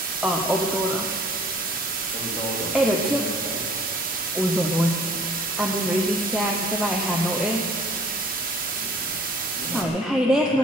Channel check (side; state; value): both; normal; correlation 0.53